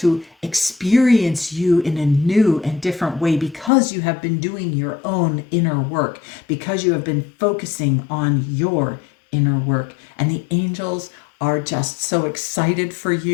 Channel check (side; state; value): right; drops out; at 3.7 s